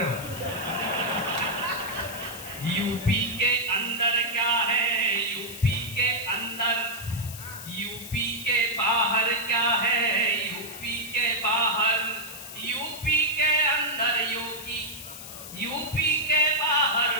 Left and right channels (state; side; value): noise; left; hiss, 12 dB below the sound